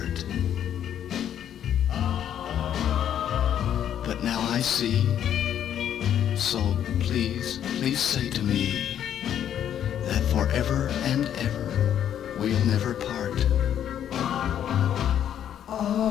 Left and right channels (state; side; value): quieter; right; 9.9 dB